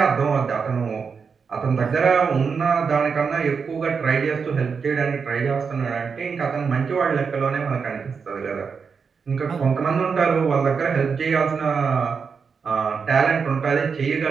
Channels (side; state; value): left; quieter; 5.7 dB